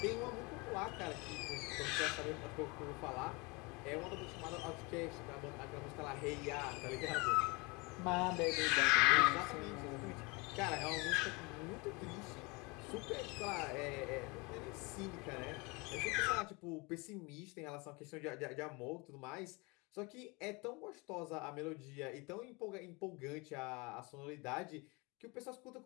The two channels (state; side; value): quieter; right; 27.3 dB